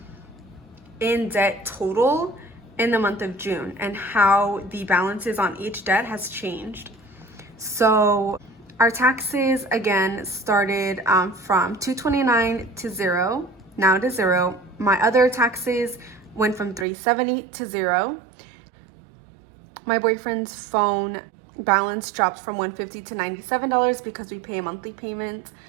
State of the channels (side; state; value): left; drops out; at 16.9 s